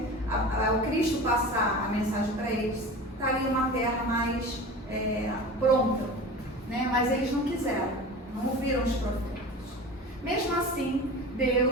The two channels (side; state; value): both; normal; correlation 0.34